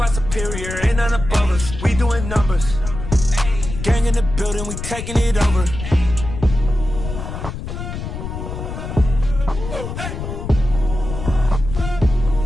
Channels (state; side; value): noise; left; rumble, 7 dB below the sound